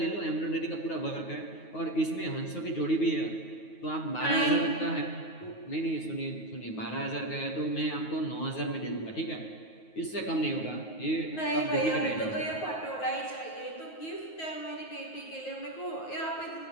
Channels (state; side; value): late; right; 9.4 ms